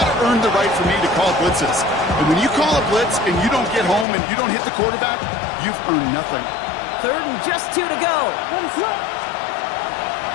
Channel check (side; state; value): right; drops out; at 4.0 s